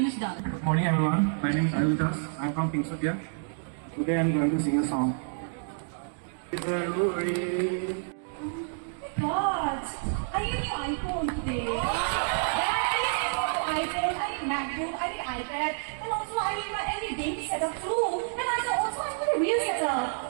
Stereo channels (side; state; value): left; silent; digital silence